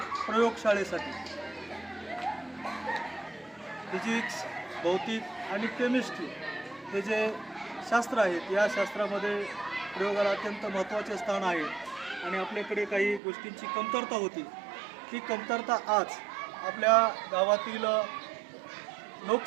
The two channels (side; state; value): left; drops out; at 13.2 s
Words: प्रयोगशाळेसाठी फिजिक्स, भौतिक आणि केमिस्ट्री हे जे शास्त्र आहेत, या शास्त्रामध्ये प्रयोगाला अत्यंत महत्त्वाचे स्थान आहे आणि आपल्याकडे काही गोष्टींची कमतरता होती. ती कमतरता आज आपल्या गावातील